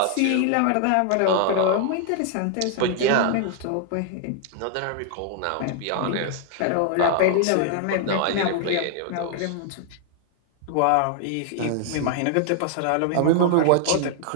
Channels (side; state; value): both; different; correlation 0.00